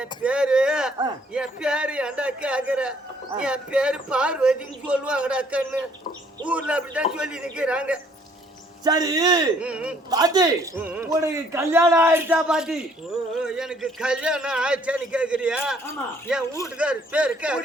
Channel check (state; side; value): normal; both; correlation 0.63